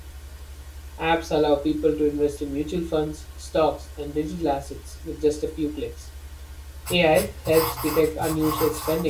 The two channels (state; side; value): identical; both; correlation 1.00